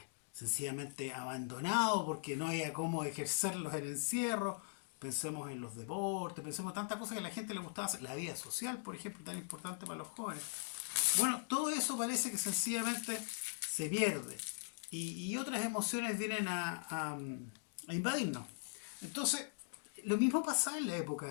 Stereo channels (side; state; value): right; silent; digital silence